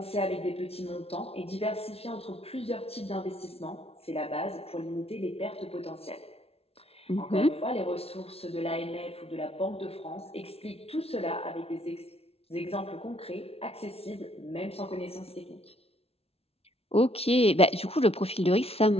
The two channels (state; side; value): late; right; 0.29 ms